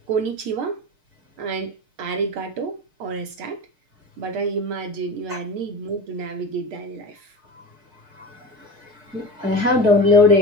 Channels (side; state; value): left; late; 6.6 ms